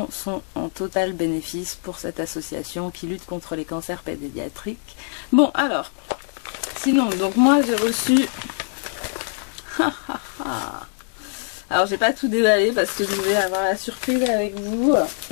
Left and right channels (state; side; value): silent; right; 61 dB below the other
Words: sont en total bénéfice pour cette association qui lutte contre les cancers pédiatriques. Bon alors, sinon, donc moi j'ai reçu... Alors j'ai pas tout déballé parce que je vais avoir la surprise avec vous.